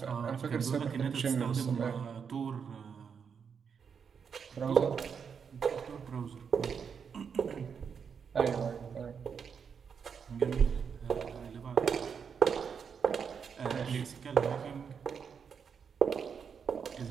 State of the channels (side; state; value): left; quieter; 6.6 dB